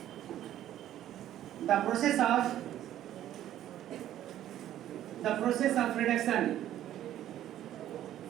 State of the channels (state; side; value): quieter; left; 12.2 dB